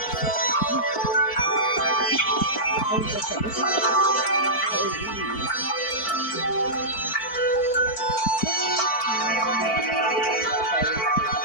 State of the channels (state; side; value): late; right; 4.5 ms